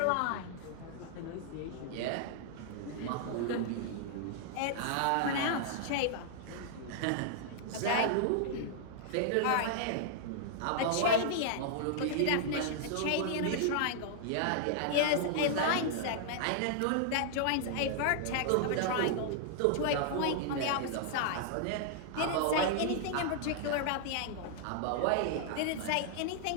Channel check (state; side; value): different; both; correlation -0.01